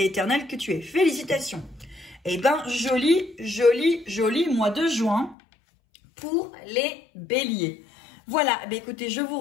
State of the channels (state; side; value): drops out; right; at 5.4 s